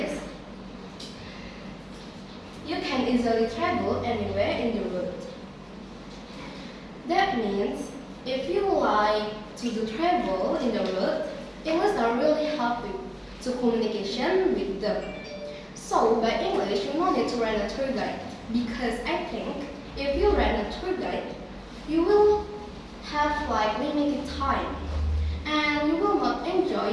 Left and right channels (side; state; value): both; identical; correlation 1.00